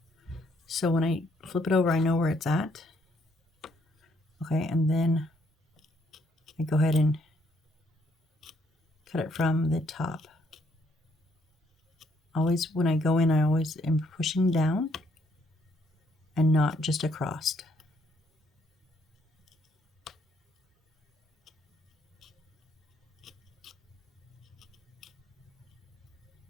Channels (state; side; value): normal; both; correlation 0.70